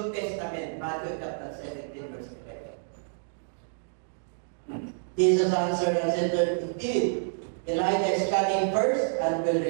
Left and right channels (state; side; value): silent; left; digital silence